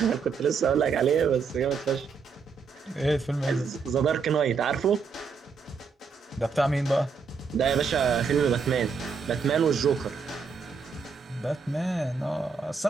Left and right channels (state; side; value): quieter; left; 5.4 dB